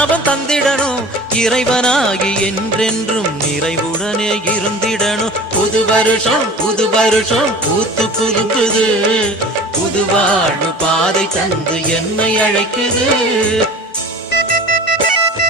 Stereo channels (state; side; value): normal; both; correlation 0.40